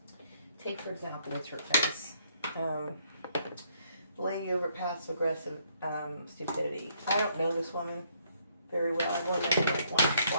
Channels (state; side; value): inverted; both; correlation -0.69